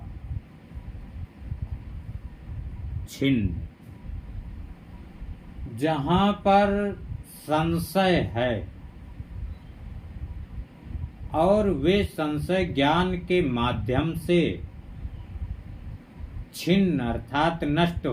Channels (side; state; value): both; identical; correlation 1.00